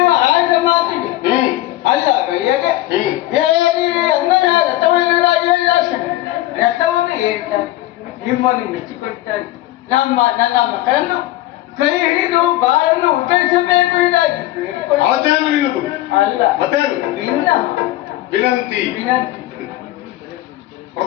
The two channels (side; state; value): right; quieter; 15.9 dB